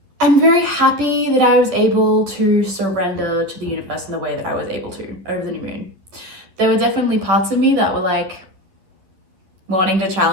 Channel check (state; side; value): late; left; 11 ms